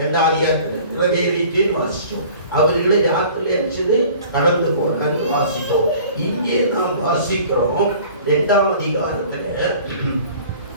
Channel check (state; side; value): inverted; both; correlation -0.48